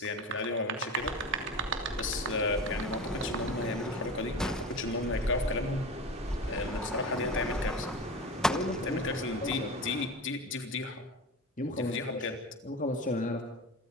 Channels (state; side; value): normal; both; correlation 0.30